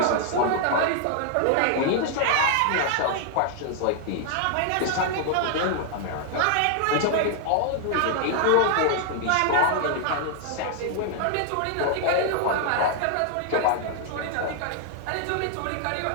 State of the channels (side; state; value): both; different; correlation 0.00